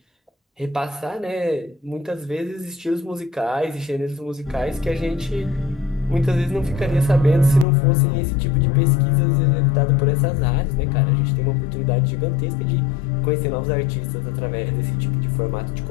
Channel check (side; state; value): right; drops out; at 7.7 s